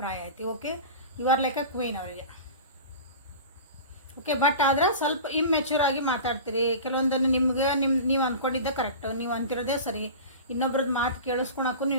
ಐತಿ. Okay, you are like a queen ಅವರಿಗೆ. ಓಕೆ, ಬಟ್ ಆದ್ರೆ ಸ್ವಲ್ಪ ಇಮ್ಮೆಚ್ಯೂರ್ ಆಗಿ ಮಾತಾಡ್ತೀರಿ. ಕೆಲವೊಂದನ್ನು ನಿಮ್ಗೆ ನೀವು ಅಂದ್ಕೊಂಡಿದ್ದೆ ಕರೆಕ್ಟ್, ನೀವು ಅಂತಿರೋದೇ ಸರಿ, ಇನ್ನೊಬ್ರದ್ದು ಮಾತು ಕೇಳಿಸ್ಕೊಳಕ್ಕೂ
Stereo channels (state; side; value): inverted; both; correlation -0.34